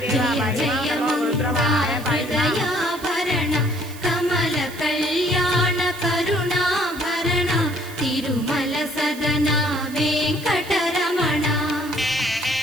జయ జయ మంగా హృదయాభరణ కమల కళ్యాణ కరుణాభరణ తిరుమల సదన వెంకటరమణ.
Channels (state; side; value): noise; right; hiss, 17 dB below the sound